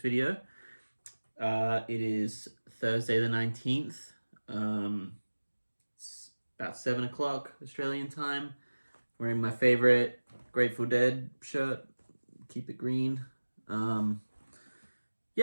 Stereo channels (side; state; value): both; inverted; correlation -1.00